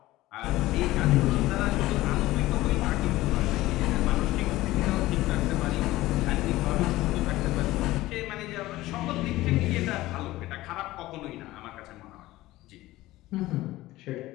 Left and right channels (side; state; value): right; quieter; 17.3 dB